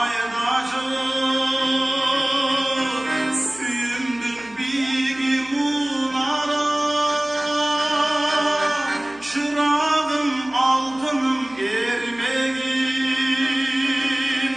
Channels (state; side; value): noise; right; hum, 27 dB below the sound